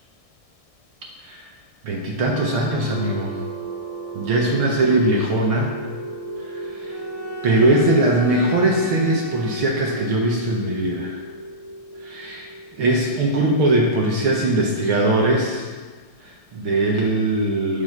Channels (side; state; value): left; late; 1.6 ms